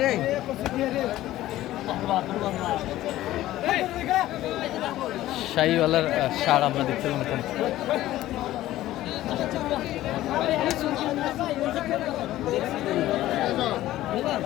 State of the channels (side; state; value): right; quieter; 14.9 dB